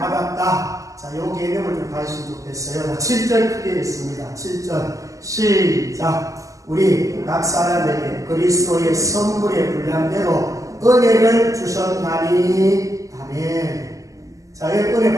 자, 요 개념을 좀 가지시면 좋겠어요. 7절 크게 있습니다. 7절 시작. 우리 각 사람에게 그리스도의 선물의 분량대로 은혜를 주셨나니. 아멘. 자, 여러분 은혜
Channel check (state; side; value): late; left; 0.16 ms